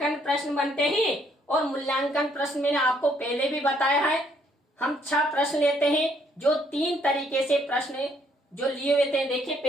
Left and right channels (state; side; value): normal; both; correlation 0.68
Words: प्रश्न बनते हैं। और मूल्यांकन प्रश्न मैंने आपको पहले भी बताया है, हम 6 प्रश्न लेते हैं जो 3 तरीके से प्रश्न जो लिए हुए थे। देखिए